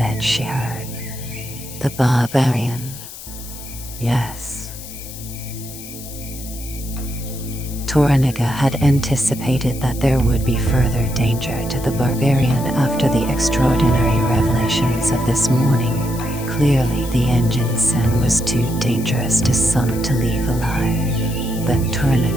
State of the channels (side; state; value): left; noise; hiss, 13 dB below the sound